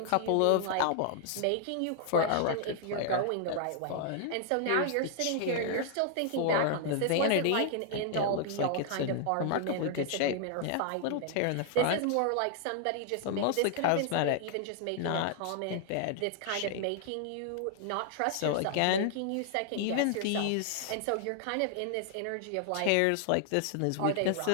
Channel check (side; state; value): both; different; correlation 0.00